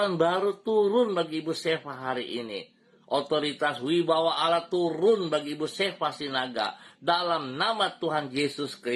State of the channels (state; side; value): identical; both; correlation 1.00